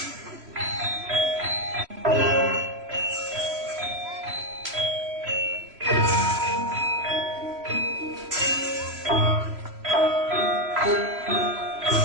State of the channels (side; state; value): left; late; 3.0 ms